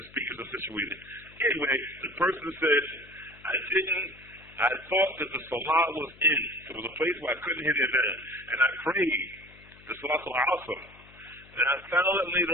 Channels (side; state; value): left; noise; hum, 24 dB below the sound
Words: speakers are situated. Anyway, the person said, I thought that the salah was in. There was a place where I couldn't hear the adhan. And I prayed the Salaat al-Asr. And I found that